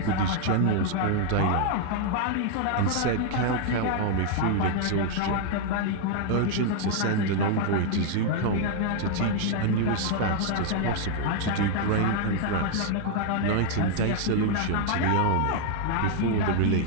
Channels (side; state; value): both; different; correlation 0.00